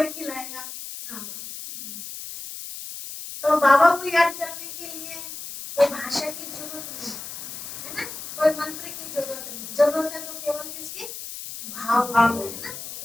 खिलाएगा। हाँ, तो बाबा को याद करने के लिए कोई भाषा की जरूरत नहीं है ना, कोई मंत्र की जरूरत नहीं, जरूरत है तो केवल किसकी, भाव की, है ना।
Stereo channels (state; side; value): noise; left; hiss, 10 dB below the sound